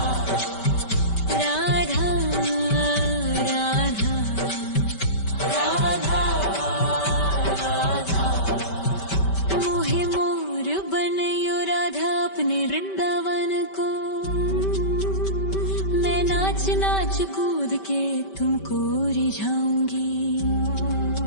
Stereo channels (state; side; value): late; right; 5.2 ms